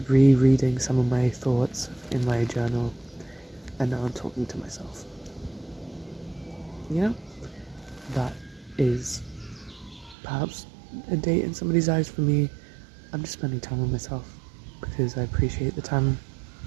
rereading some of my thoughts in my journal, and now I'm talking to myself. That is perhaps a date in somebody's eyes. For me, I'm just spending time with myself because I appreciate the time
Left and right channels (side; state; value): left; drops out; at 10.2 s